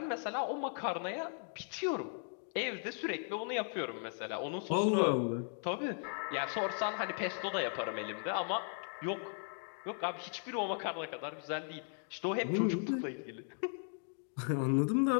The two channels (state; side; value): silent; right; 53 dB below the other